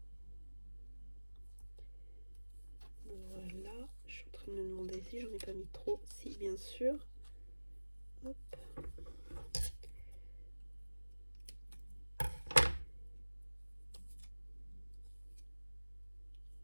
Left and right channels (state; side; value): inverted; both; correlation -1.00